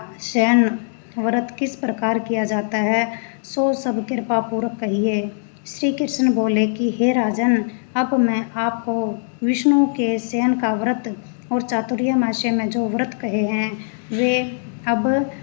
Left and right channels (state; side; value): silent; right; digital silence